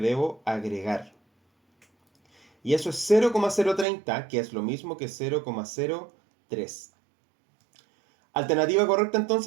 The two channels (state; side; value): drops out; left; at 3.9 s